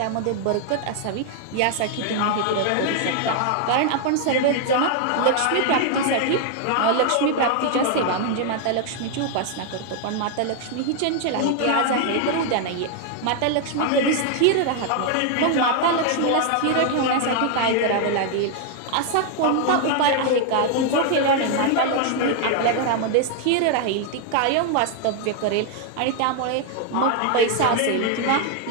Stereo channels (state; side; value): different; both; correlation 0.00